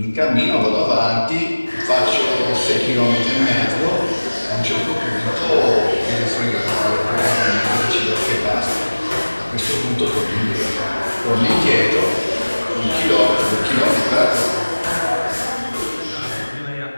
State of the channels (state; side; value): inverted; both; correlation -1.00